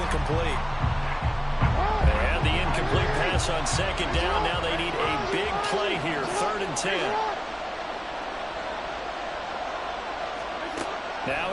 And the incomplete pass on 2nd down. Now they need a big play here, 3rd and 10.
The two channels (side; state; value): both; identical; correlation 1.00